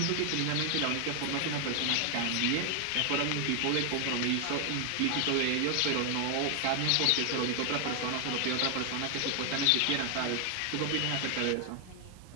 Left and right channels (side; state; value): both; different; correlation 0.00